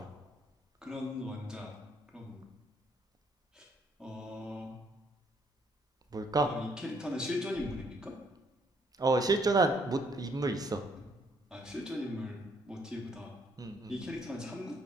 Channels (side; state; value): both; normal; correlation 0.69